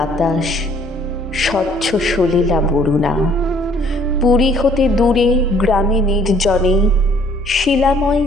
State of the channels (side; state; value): both; normal; correlation 0.60